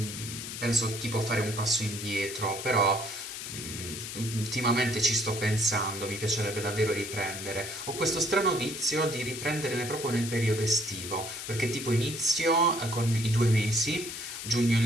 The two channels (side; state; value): left; noise; hiss, 8 dB below the sound